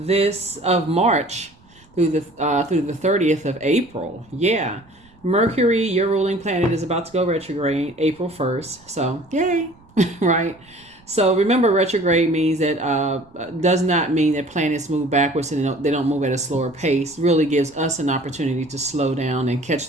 March through the 30th of April. Yeah. Mercury, your ruling planet, is about to go retrograde April 1st. So, yay. Right? So remember, retrograde means that does not mean that planets move backwards and they don't move at a slower pace. Really gives us an opportunity to slow down and catch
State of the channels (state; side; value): noise; right; rumble, 29 dB below the sound